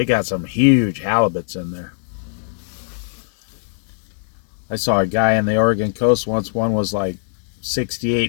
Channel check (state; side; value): silent; right; 65 dB below the other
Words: got some huge halibuts in there. I saw a guy in the Oregon coast once. One was like